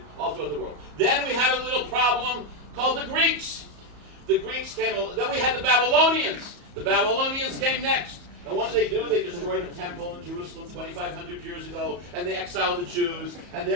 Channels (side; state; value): left; late; 34 ms